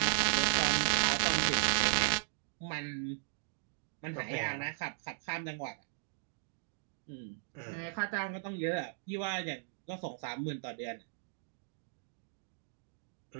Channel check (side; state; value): left; silent; digital silence